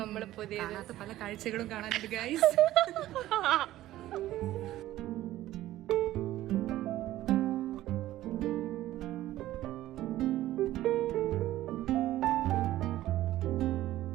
പുതിയ പല കാഴ്ചകളും കാണാനുണ്ട് ഗൈസ്.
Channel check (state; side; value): quieter; left; 14.8 dB